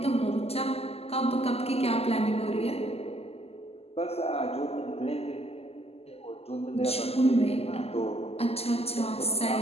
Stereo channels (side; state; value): right; late; 0.29 ms